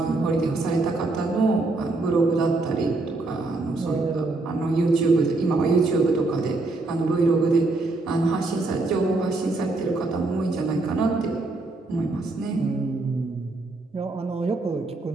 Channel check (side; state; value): left; quieter; 3.2 dB